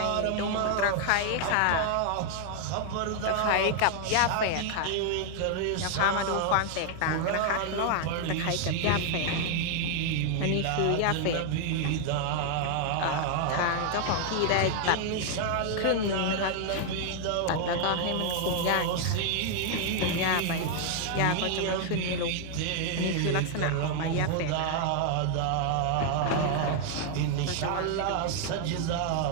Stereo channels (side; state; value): both; different; correlation 0.00